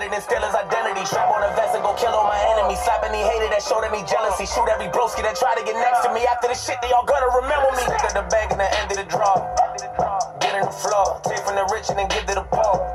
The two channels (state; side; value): identical; both; correlation 1.00